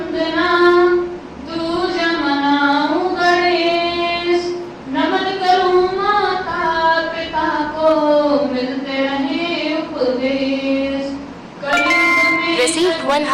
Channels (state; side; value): identical; both; correlation 1.00